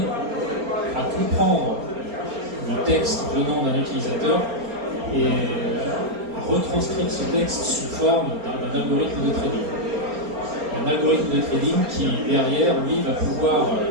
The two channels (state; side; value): late; left; 4.3 ms